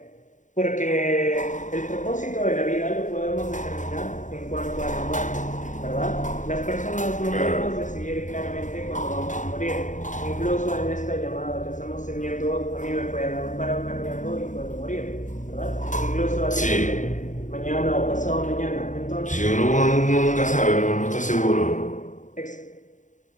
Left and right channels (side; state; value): right; late; 0.36 ms